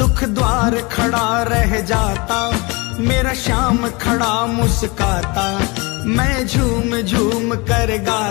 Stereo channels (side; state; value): right; quieter; 26.7 dB